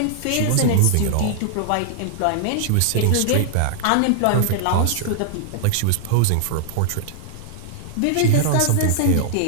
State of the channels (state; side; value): different; both; correlation -0.01